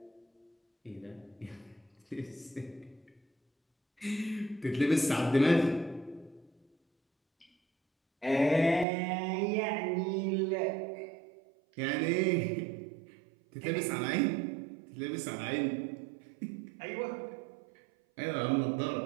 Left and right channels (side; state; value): left; drops out; at 8.8 s